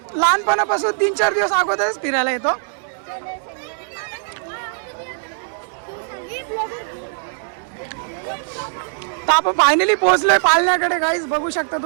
लहानपणापासून 3-4 दिवस अगोदरच फिरायला येतो. तर आपण फायनली पोहोचलोय पाळण्याकडे गाईज. बघू शकता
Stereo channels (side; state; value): left; silent; digital silence